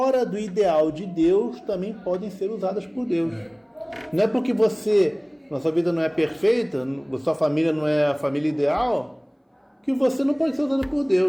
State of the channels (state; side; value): identical; both; correlation 1.00